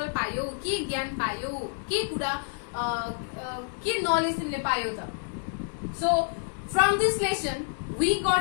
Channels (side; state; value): right; silent; 59 dB below the other